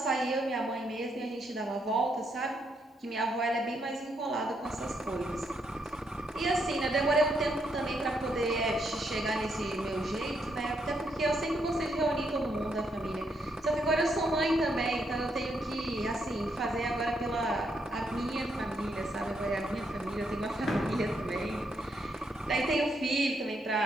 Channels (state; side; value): normal; both; correlation 0.77